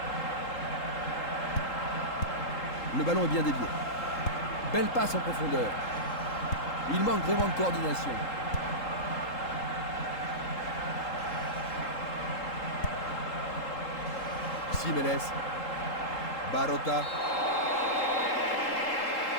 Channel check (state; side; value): late; right; 3.8 ms